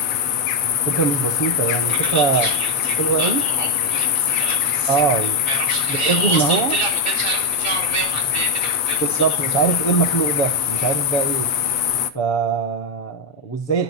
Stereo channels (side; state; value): right; late; 7.3 ms